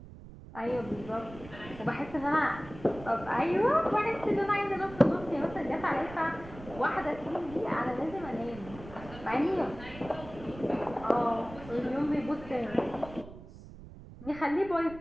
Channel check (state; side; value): noise; right; rumble, 16 dB below the sound